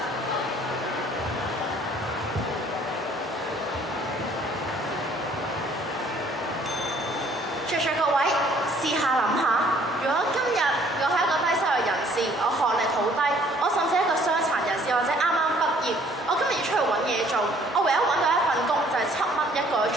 在座各位，試下諗下，如果今日我係一個低收入人士，我學歷好低，我甚至係一個傷殘人士或者啱啱畢業，我今日要出去揾嘢做，我唯一揾到一份工就係7蚊一個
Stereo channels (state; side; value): normal; both; correlation 0.59